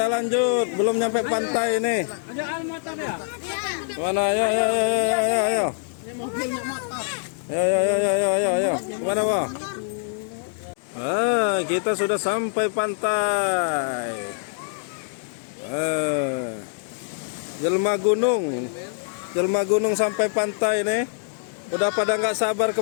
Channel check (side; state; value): right; silent; digital silence